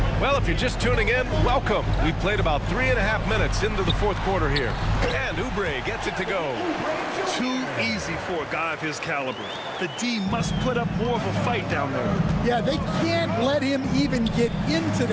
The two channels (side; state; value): both; identical; correlation 1.00